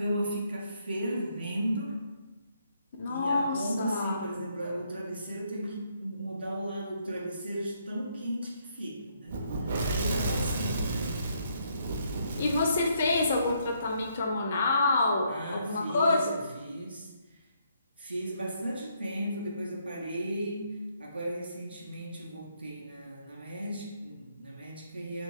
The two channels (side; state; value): both; inverted; correlation -0.72